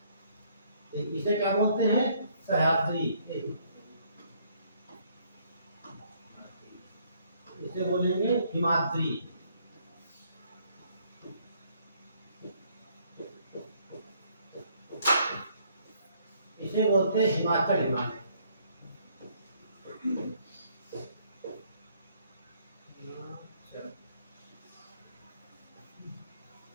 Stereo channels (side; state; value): both; inverted; correlation -0.66